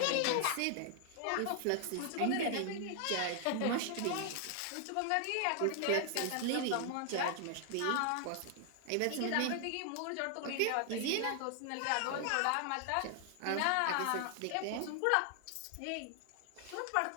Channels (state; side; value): different; both; correlation 0.00